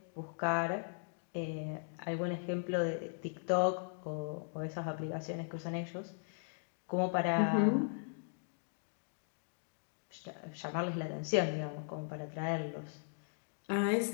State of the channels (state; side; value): silent; right; digital silence